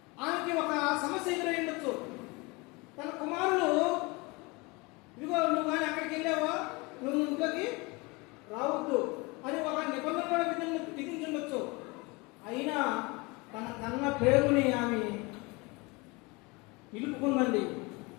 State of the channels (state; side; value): quieter; right; 25.5 dB